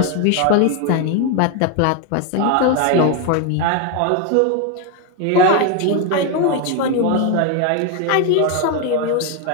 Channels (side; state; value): both; different; correlation 0.01